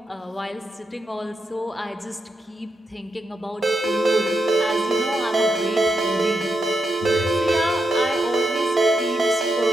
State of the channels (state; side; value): normal; both; correlation 0.85